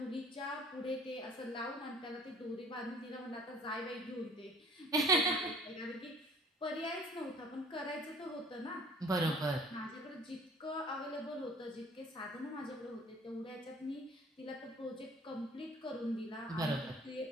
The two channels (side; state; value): both; normal; correlation 0.51